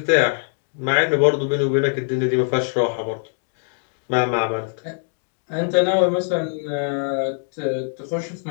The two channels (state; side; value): silent; right; 57 dB below the other